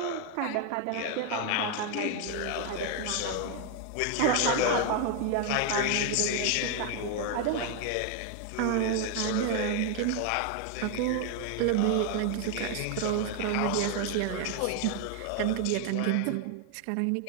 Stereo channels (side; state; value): both; different; correlation 0.01